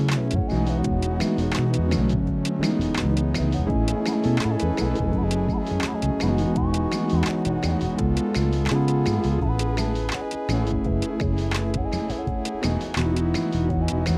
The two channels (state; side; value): identical; both; correlation 1.00